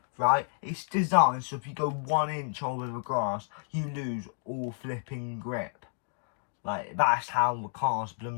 right, it's designed so if you go 1 inch over the grass, you lose all flipping grip. Like, that's how the car's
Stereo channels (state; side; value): silent; right; digital silence